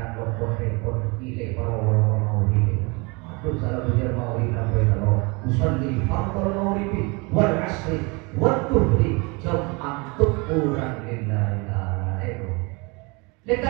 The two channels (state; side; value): quieter; left; 28.6 dB